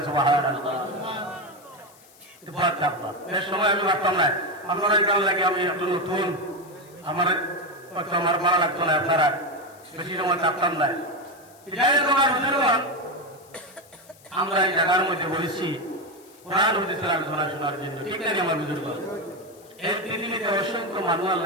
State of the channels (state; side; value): noise; left; hiss, 26 dB below the sound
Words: সুবহানাল্লাহ। এটা ভয় থাকবা, এর সময় আমি ভাবতাম না আপনারা কেমন লাগে, আমি একটু নতুন, আমার আমার ভালো লাগতো না, আপনারা বেশি সময় থাকতাম না। যাই হোক আমার বুঝলাম, আমরা এই জায়গার মধ্যে বলেছি কোরআন হাদিসের আলোচনা শোনার জন্য। ঠিক আছে আমার বুজুর্গ, এই পৃথিবীতে অসংখ্য মানুষ